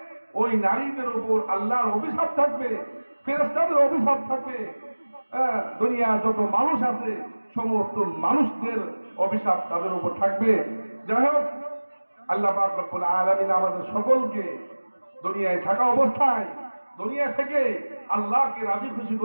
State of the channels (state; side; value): inverted; both; correlation -1.00